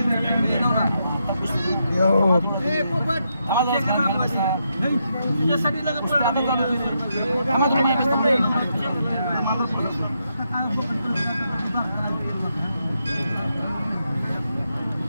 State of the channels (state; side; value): inverted; both; correlation -0.81